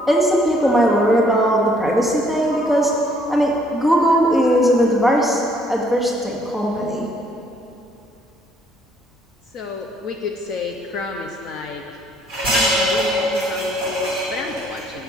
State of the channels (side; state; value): both; normal; correlation 0.65